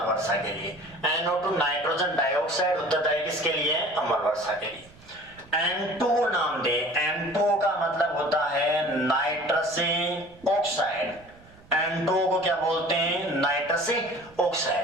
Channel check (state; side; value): noise; right; rumble, 25 dB below the sound